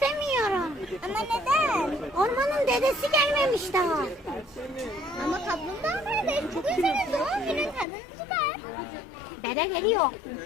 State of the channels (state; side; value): drops out; right; at 7.9 s